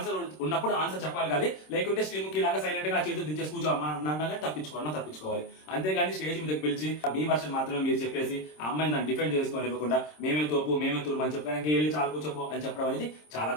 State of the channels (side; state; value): right; late; 26 ms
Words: ఉన్నప్పుడు ఆన్సర్ చెప్పాలి. కానీ లేకుంటే శ్రీముఖి లాగా సైలెంట్ గా చేతులు దించేసి కూర్చో అన్నగా తప్పించుకోవాలి. అంతేగాని స్టేజ్ మీదకి పిలిచి మీ వర్షన్ మాత్రమే మీరు చెప్పేసి ఆ అమ్మాయిని దాన్ని డిఫెండ్ చేసుకొని ఇవ్వకుండా మేమే తోపు మేమే తురుము అని చెప్పడానికి వెళ్ళి చాలా కూర్చోపో అని చెప్పడం అనేది చాలా